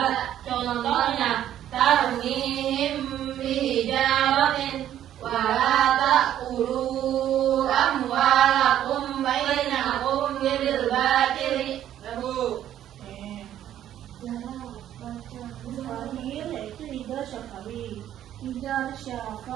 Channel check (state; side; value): quieter; left; 11.4 dB